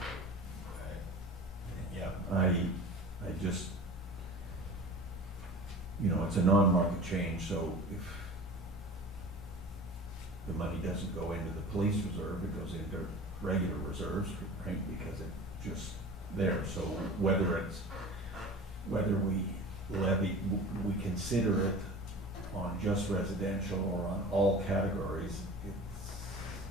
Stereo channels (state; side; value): normal; both; correlation 0.38